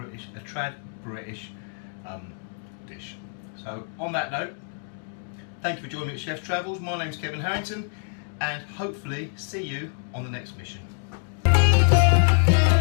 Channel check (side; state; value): right; silent; 61 dB below the other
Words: a trad British dish. So on that note, thank you for joining me at Chef's Travels. My name's Kevin Harrington, and hopefully see you on the next mission.